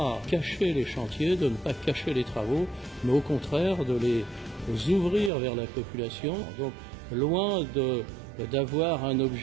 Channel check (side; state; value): left; drops out; at 5.3 s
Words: cacher les chantiers, de ne pas cacher les travaux, mais au contraire de les ouvrir vers la population. Donc, loin d'avoir un